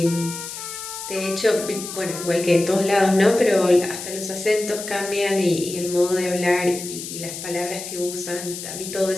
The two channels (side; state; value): left; noise; hiss, 9 dB below the sound